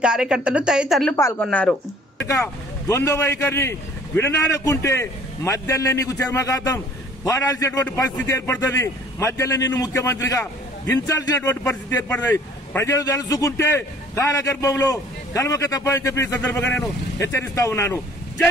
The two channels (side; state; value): both; normal; correlation 0.54